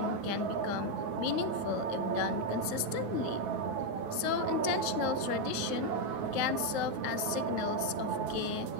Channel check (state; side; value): late; left; 9.3 ms